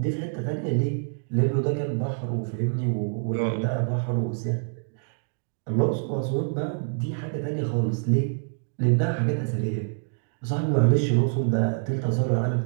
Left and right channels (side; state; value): left; silent; digital silence